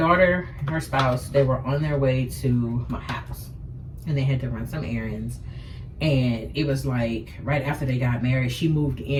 and her spouse, they were on their way to my house, and they had to run some errands. And it was like right after they got married, she moved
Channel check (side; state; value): both; identical; correlation 1.00